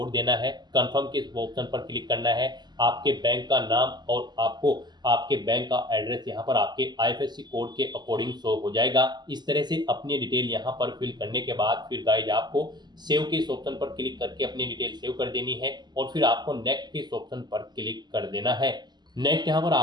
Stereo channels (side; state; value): left; late; 0.21 ms